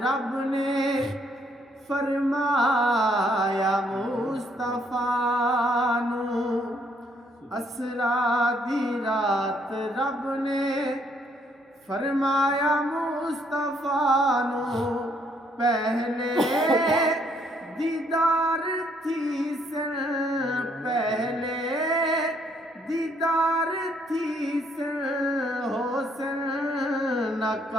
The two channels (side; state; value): both; normal; correlation 0.69